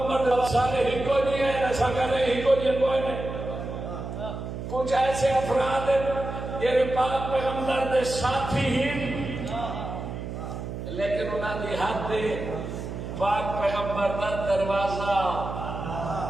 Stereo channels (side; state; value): right; noise; hum, 7 dB below the sound